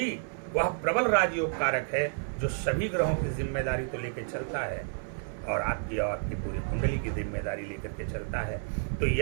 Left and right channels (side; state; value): left; silent; 58 dB below the other